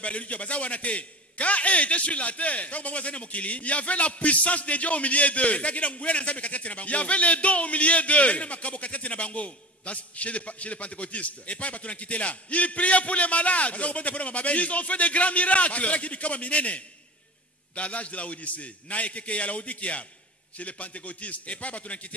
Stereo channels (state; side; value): normal; both; correlation 0.34